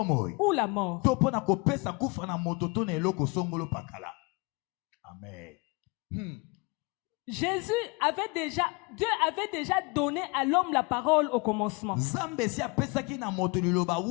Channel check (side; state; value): right; quieter; 27.7 dB